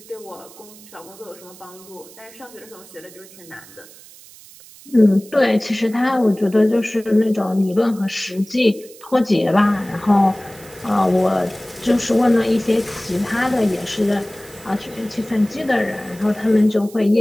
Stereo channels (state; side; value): noise; right; hiss, 21 dB below the sound